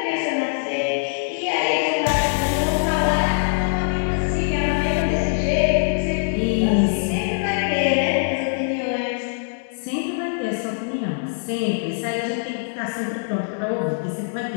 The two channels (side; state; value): right; silent; digital silence